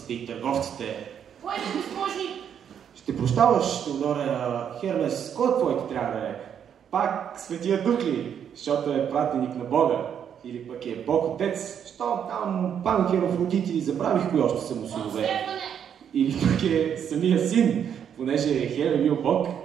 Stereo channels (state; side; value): quieter; left; 8.5 dB